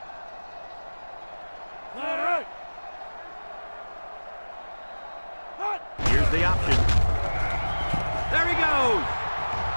Here's the option. There he goes.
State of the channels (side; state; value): both; inverted; correlation -1.00